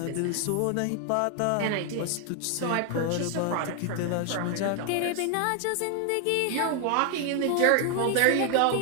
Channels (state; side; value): different; both; correlation 0.00